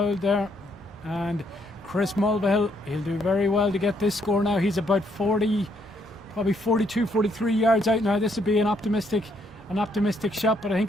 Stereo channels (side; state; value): both; normal; correlation 0.71